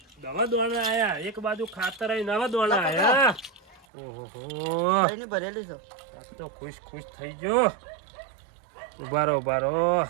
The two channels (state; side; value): drops out; left; at 3.9 s